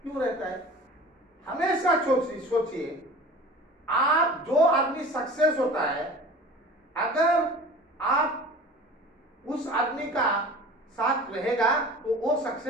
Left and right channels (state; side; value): normal; both; correlation 0.40